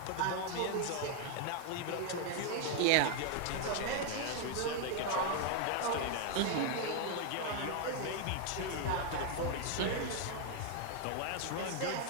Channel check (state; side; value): different; both; correlation 0.00